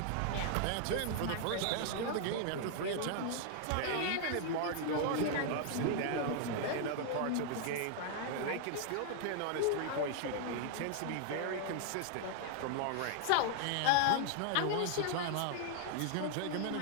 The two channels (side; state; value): both; different; correlation 0.00